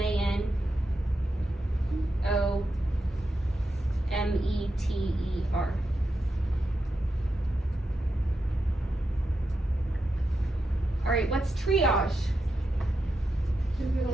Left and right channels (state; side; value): normal; both; correlation 0.87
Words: Alright, what's triage? Who